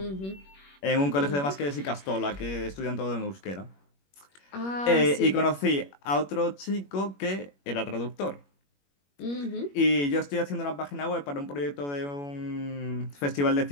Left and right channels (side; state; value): right; late; 21 ms